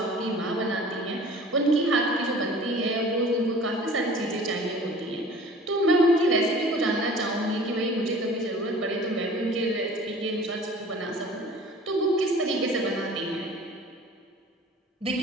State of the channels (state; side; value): normal; both; correlation 0.46